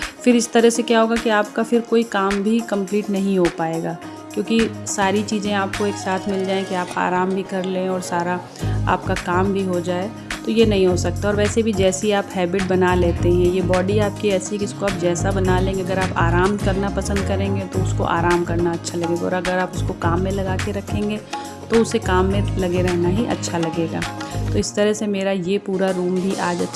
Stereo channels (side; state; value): both; identical; correlation 1.00